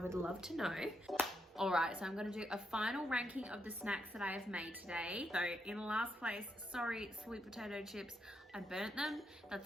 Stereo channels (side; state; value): both; normal; correlation 0.80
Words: love to know. All right, so I'm gonna do a final ranking of the snacks that I have made today. So in last place, sorry, sweet potato chips, I burnt them.